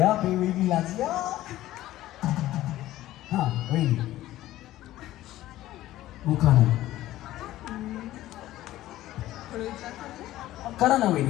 वहिनी लाजल्या. हा वहिनी उखाणा करा ना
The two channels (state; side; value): quieter; right; 15.0 dB